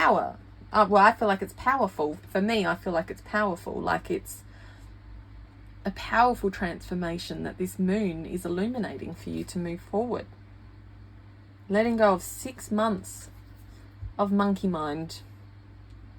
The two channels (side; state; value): both; identical; correlation 1.00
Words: Well, I feel like it's powerful. For me, I feel like it's powerful. Like it's a powerful transformation that this moon is illuminating for you to move forward. Letting go of 6 months of monkey mind